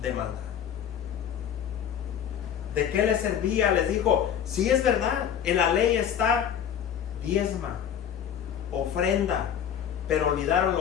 de maldad. ¿De qué les servía? Les dijo, sí es verdad, en la ley está diezma, ofrenda, pero olvidaron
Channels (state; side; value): quieter; right; 9.0 dB